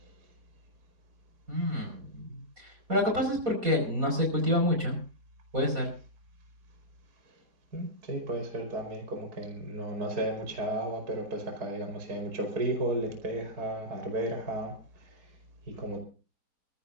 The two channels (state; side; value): late; left; 4.2 ms